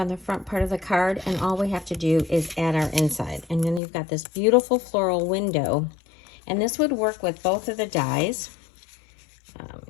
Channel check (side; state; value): right; drops out; at 3.8 s